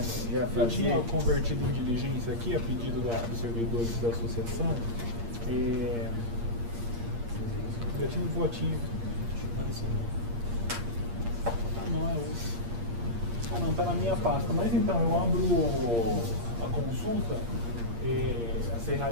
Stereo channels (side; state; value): left; late; 8.6 ms